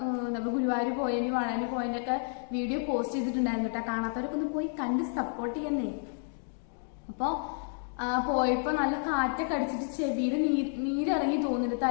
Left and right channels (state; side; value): silent; right; 57 dB below the other